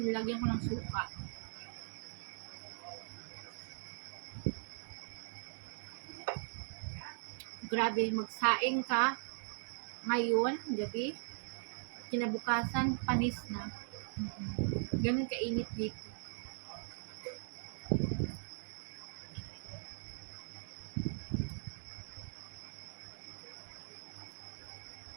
nilagyan ko ng suka. Grabe, magsaing ka ngayon, gabi, kinabukasan, panis na. Ganun kainit dito.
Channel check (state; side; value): silent; left; digital silence